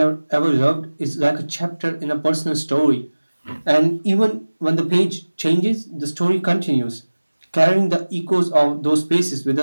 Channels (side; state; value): both; inverted; correlation -1.00